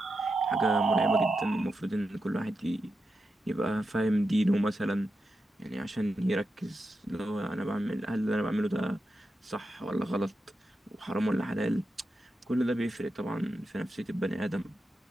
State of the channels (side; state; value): both; normal; correlation 0.88